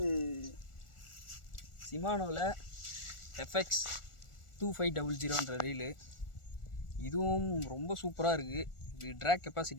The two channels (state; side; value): late; right; 1.4 ms